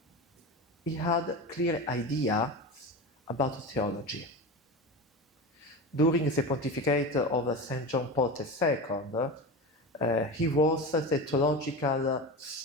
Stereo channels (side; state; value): both; normal; correlation 0.26